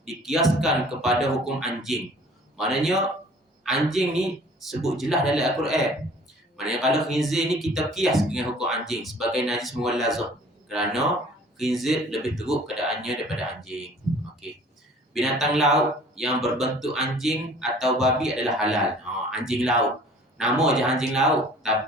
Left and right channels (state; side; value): normal; both; correlation 0.50